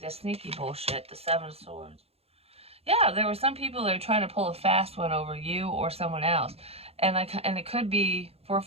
the sneaky bullshit, the Seven of Swords. Yeah, there were some people that are trying to pull a fast one over you or someone else. And it could be for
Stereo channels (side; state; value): left; late; 0.29 ms